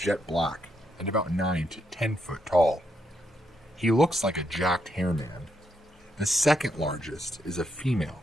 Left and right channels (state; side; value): normal; both; correlation 0.78